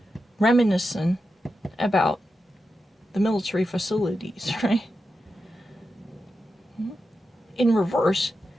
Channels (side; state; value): both; normal; correlation 0.89